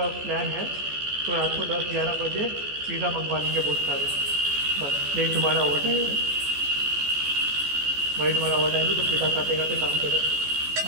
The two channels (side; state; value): left; late; 14 ms